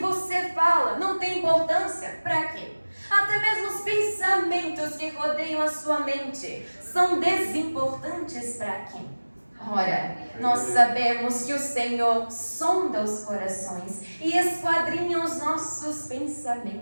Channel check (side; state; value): both; inverted; correlation -1.00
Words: fala não tem importância para quem? Até mesmo os pensamentos que rodeiam a sua mente são desimportantes para quem? Ora, nós sabemos que o Senhor sonda os corações e esquadrinha os nossos